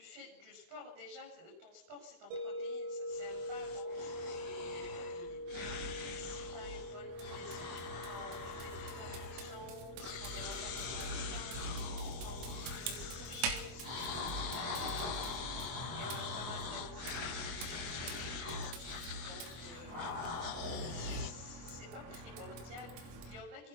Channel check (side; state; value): left; late; 24 ms